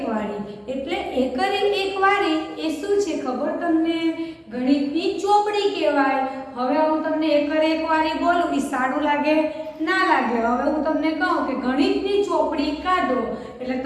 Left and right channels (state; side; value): identical; both; correlation 1.00